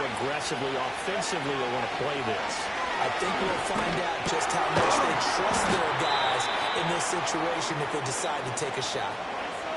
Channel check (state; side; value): identical; both; correlation 1.00